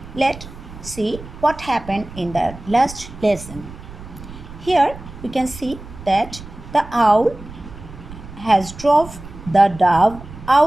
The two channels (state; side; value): noise; right; rumble, 15 dB below the sound